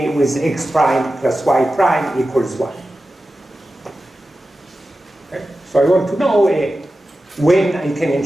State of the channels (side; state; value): both; normal; correlation 0.93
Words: with x prime plus y prime equals 1. Okay? So I want to know when I can